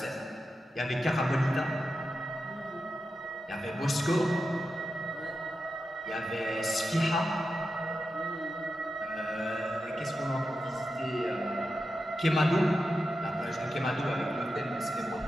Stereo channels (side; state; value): both; normal; correlation 0.90